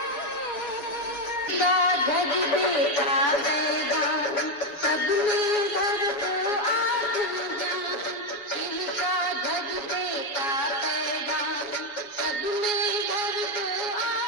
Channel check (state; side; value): late; right; 7.2 ms